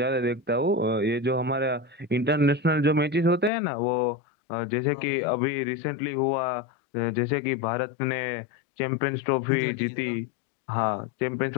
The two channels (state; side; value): drops out; right; at 3.5 s